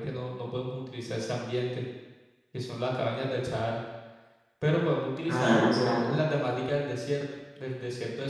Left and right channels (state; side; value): identical; both; correlation 1.00